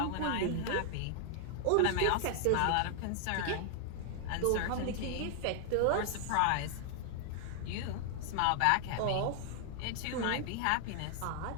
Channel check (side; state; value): both; different; correlation 0.00